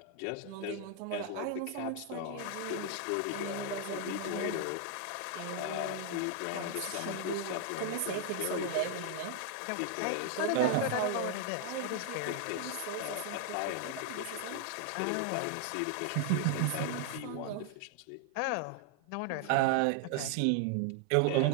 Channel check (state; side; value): different; both; correlation 0.00